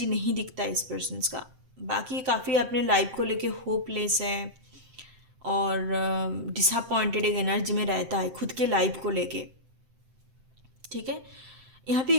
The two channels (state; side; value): late; left; 7.8 ms